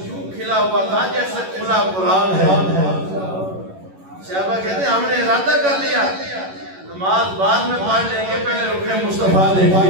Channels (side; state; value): left; late; 11 ms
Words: یوں کھلا ہوا تھا جیسے کھلا قرآن ہے۔ صحابہ کہتے ہیں ہم نے ارادہ کر لیا نماز بعد میں پڑھ لیں گے، پہلے رخ مصطفیٰ